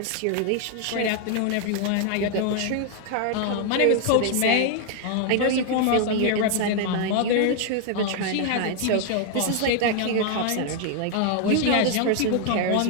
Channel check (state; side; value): different; both; correlation 0.00